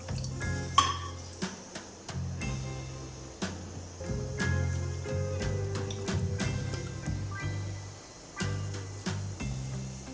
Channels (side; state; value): both; identical; correlation 1.00